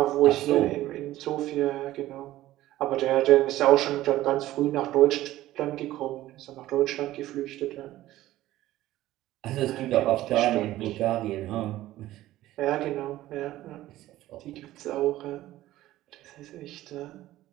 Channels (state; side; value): quieter; left; 15.2 dB